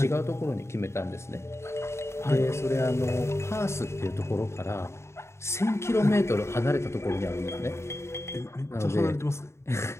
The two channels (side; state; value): right; late; 0.13 ms